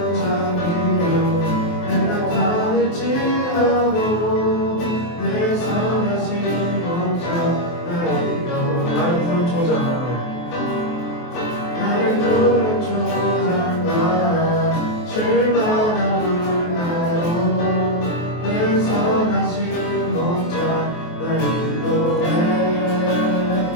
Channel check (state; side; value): late; right; 23 ms